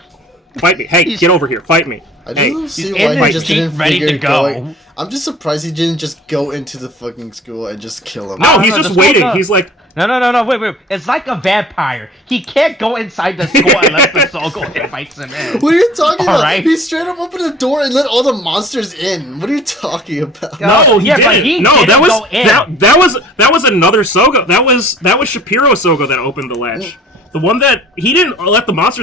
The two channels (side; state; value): both; normal; correlation 0.48